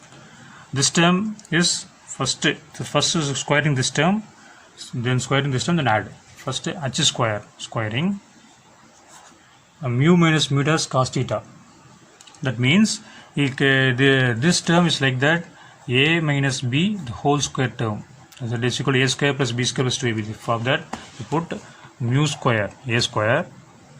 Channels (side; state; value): both; identical; correlation 1.00